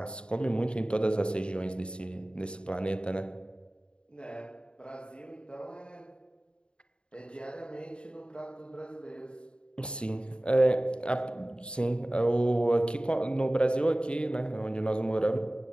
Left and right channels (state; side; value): late; right; 0.053 ms